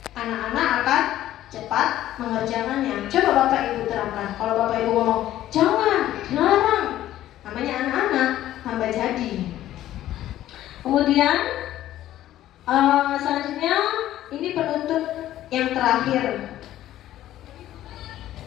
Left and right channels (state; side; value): quieter; right; 13.3 dB